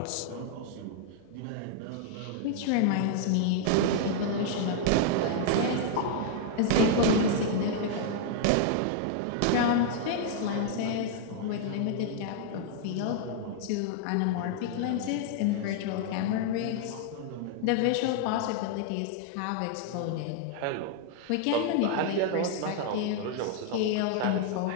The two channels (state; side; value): different; both; correlation 0.00